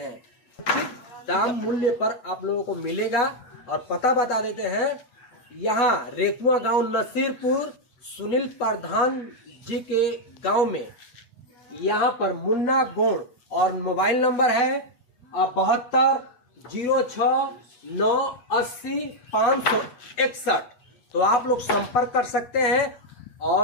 उचित दाम मूल्य पर आप लोगों को मिलेगा। और पता बता देते हैं, यहाँ रेकुआ गांव नसीरपुर सुनील प्रधान जी के गांव में, यहाँ पर मुन्ना गोड़ और मोबाइल नंबर है 7206980561। तो आप लोग संपर्क कर सकते हैं।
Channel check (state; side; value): late; right; 8.1 ms